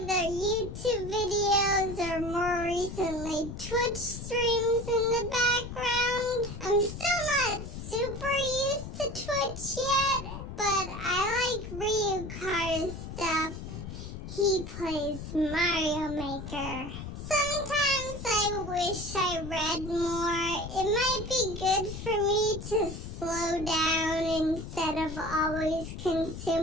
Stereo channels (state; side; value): noise; left; rumble, 9 dB below the sound